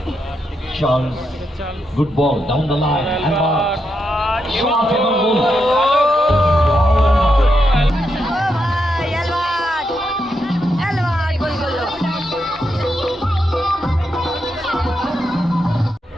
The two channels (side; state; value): both; normal; correlation 0.83